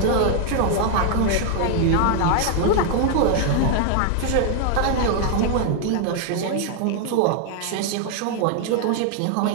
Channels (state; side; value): different; both; correlation 0.00